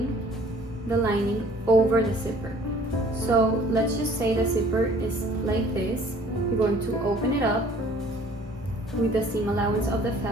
the lining over the zipper. So let's just say the zipper is like this. You're going to open it up with the seam allowance of the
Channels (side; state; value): both; normal; correlation 0.53